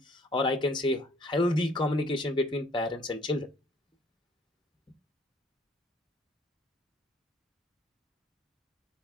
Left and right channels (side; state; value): both; normal; correlation 0.59